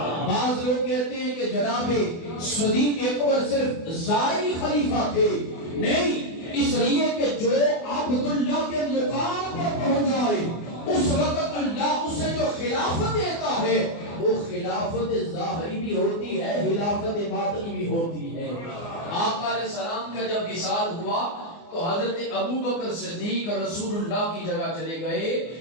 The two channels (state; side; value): late; right; 24 ms